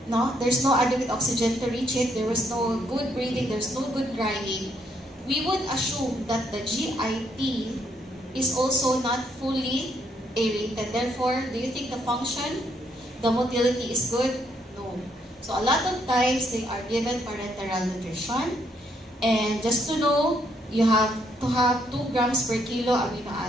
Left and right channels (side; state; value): both; normal; correlation 0.73